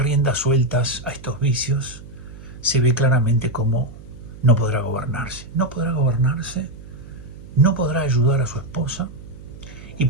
sueltas a estos vicios, se ve claramente cómo no podrá gobernarse. No podrá gobernarse, no podrá ayudar a su esposa y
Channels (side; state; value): right; noise; hum, 17 dB below the sound